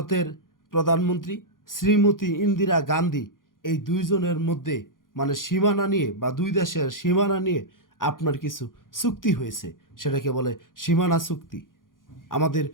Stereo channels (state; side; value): late; right; 0.90 ms